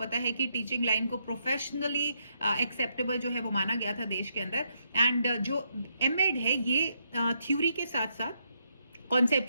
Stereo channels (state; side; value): inverted; both; correlation -0.78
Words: है कि टीचिंग लाइन को प्रोफेशनली एक्सेप्टेबल जो है वो माना गया था देश के अंदर। एंड जो एमएड है ये थ्योरी के साथ साथ